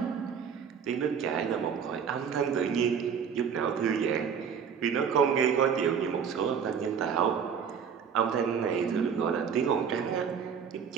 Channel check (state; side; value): quieter; left; 7.1 dB